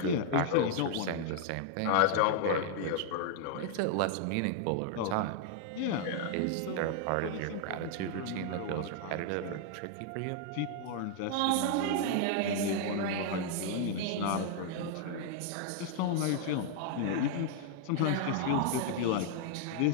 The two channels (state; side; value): different; both; correlation -0.01